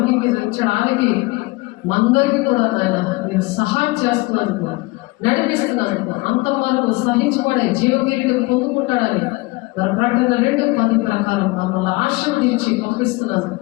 మందరికి కూడా నాయన మీరు సహాయం చేస్తున్నందుకు, నడిపిస్తున్నందుకు, అంతం వరకు సహించబడే జీవకిరీటం పొందుకుంటాడని మరి ప్రకటన 2:10 ప్రకారం మమ్మల్ని ఆశీర్వదించి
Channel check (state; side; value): quieter; right; 23.2 dB